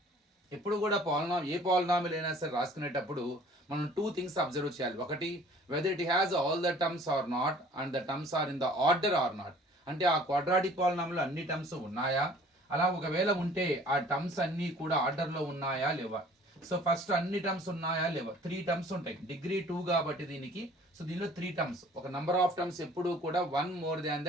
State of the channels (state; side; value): normal; both; correlation 0.52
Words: ఎప్పుడు కూడా ఏ పాలినామిల్ అయినా సరే రాసుకునేటప్పుడు మనం 2 థింగ్స్ అబ్జర్వ్ చేయాలి. ఒకటి, whether it has all the terms or not and the terms are in the order or not. అంటే ఆ quadratic పాలినామిల్లో అన్ని టర్మ్స్ ఉన్నాయా, అలా ఒకవేళ ఉంటే ఆ టర్మ్స్ అన్నీ కూడా ఆర్డర్లో ఉన్నాయా లేవా. సో ఫస్ట్ అన్ని టర్మ్స్ ఉన్నాయా లేవా. 3 టర్మ్స్ ఉంటాయి, డిగ్రీ 2 కాబట్టి దీనికి. సో దీనిలో 3 టర్మ్స్, ఒక నంబర్ ఆఫ్ టర్మ్స్ ఎప్పుడు కూడా 1 more than